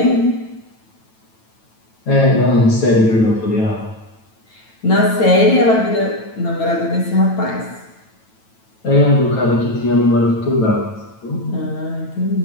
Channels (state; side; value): late; right; 9.1 ms